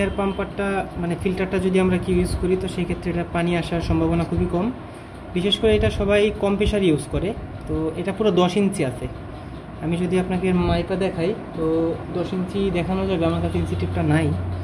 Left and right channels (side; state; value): both; identical; correlation 1.00